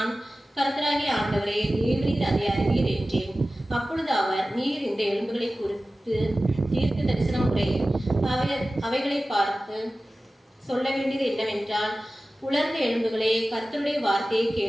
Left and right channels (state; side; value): normal; both; correlation 0.96